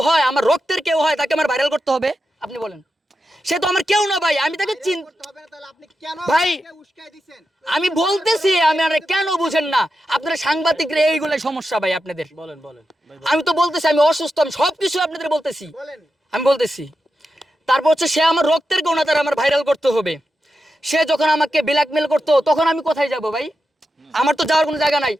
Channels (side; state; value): both; normal; correlation 0.89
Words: হয়, আমার রক্তের কেউ হয়, তাকে আমার ভাইরাল করতে হবে? আপনি বলেন, সে তো আমার কেউ না ভাই, আমি তাকে ভাই আমি বলতেছি, আমি আর কেন বুঝেন না আপনারা সাংবাদিকরা? এইগুলাই সমস্যা ভাই আপনাদের। বলেন আমি তো বলতেছি আমি অসুস্থ, আমি সবকিছু আপনাদের বলতেছি, আমি বলতেছি। তারপর হচ্ছে সে আমার রক্তের কেউ না, তার আমার ভাইরাল করতে হবে। সে যখন আমাকে ব্ল্যাকমেল করতো তখন আমি কোথায় যাব ভাই? আমার তো যাওয়ার কোনো জায়গা নাই,